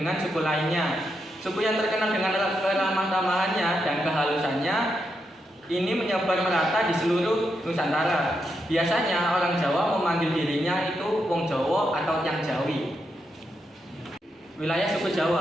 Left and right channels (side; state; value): both; normal; correlation 0.83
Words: suku lainnya. Suku yang terkenal dengan keramah tamahannya dan kehalusannya ini menyebar merata di seluruh Nusantara. Biasanya orang Jawa memanggil dirinya itu Wong Jawa atau Yang Jawi. Wilayah suku